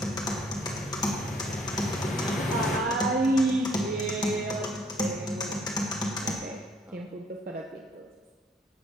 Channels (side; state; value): both; normal; correlation 0.63